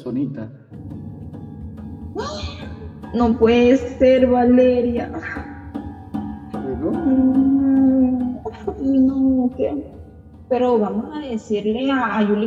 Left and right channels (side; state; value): both; identical; correlation 1.00